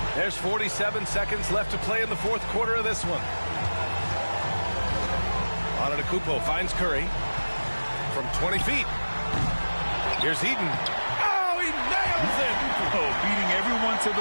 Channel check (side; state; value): both; inverted; correlation -1.00